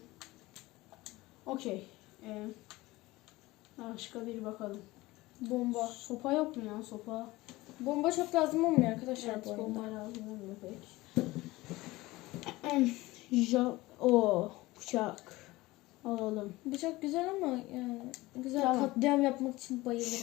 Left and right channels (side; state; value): right; quieter; 19.6 dB